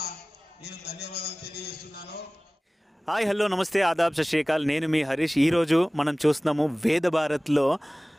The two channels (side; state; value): both; normal; correlation 0.98